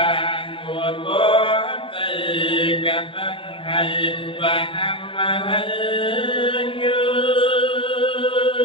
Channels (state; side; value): late; right; 0.25 ms